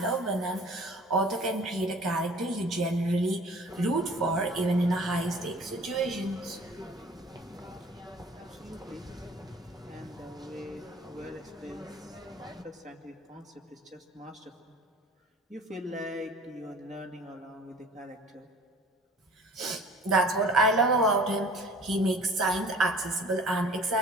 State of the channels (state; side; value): normal; both; correlation 0.48